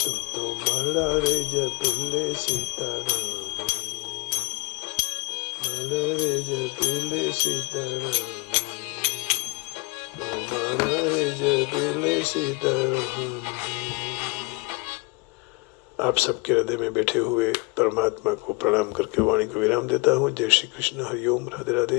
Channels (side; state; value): right; quieter; 27.2 dB